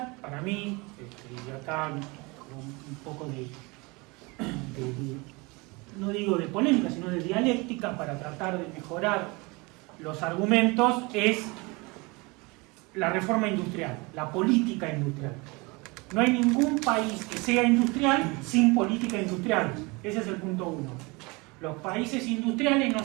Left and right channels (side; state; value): left; quieter; 26.3 dB